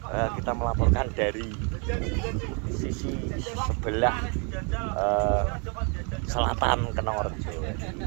kita melaporkan dari sisi sebelah selatan Kenongorjo.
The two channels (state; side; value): quieter; left; 36.7 dB